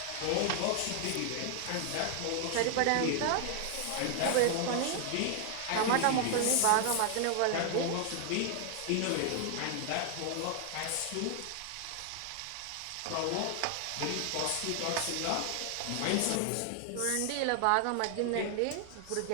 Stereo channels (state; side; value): different; both; correlation 0.00